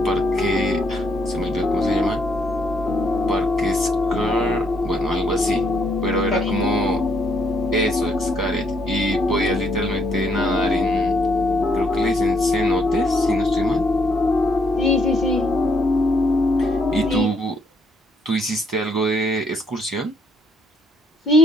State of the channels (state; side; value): normal; both; correlation 0.71